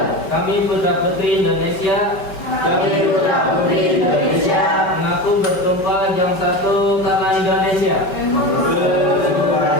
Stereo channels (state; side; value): late; right; 5.3 ms